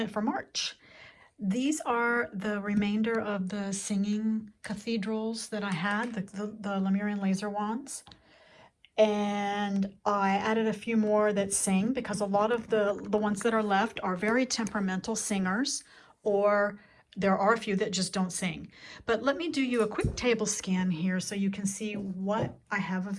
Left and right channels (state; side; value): identical; both; correlation 1.00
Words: for March. These are the remainder of the singing cathedrals that I had, the Lemurian laser wands. And I added a few more that sing because a lot of the ones that are left are very temperamental singers, or there are a few that just don't sing. But let me do you a quick table scan here so you can see what I have